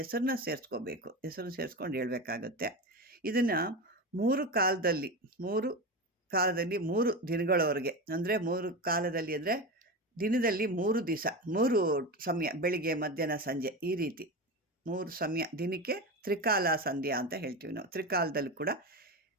ಸೇರಿಸ್ಕೋಬೇಕು. ಹೆಸರು ಸೇರಿಸ್ಕೊಂಡು ಹೇಳ್ಬೇಕಾಗತ್ತೆ. ಇದನ್ನು 3 ಕಾಲದಲ್ಲಿ 3 ದಿನಗಳವರೆಗೆ, ಅಂದರೆ 3 ಕಾಲದಲ್ಲಿ ಅಂದರೆ ದಿನದಲ್ಲಿ 3 ದಿವಸ 3 ಸಮಯ, ಬೆಳಿಗ್ಗೆ ಮಧ್ಯಾಹ್ನ ಸಂಜೆ, ಈ ರೀತಿ 3 ಸಮಯ, ದಿನಕ್ಕೆ ತ್ರಿಕಾಲ ಸಂಧ್ಯಾ ಅಂತ ಹೇಳ್ತೀವಿ ನಾವು. ತ್ರಿಕಾಲದಲ್ಲಿ ಕೂಡ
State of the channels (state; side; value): normal; both; correlation 0.22